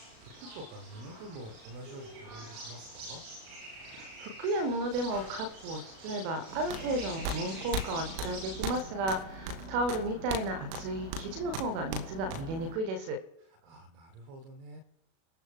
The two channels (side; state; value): left; late; 37 ms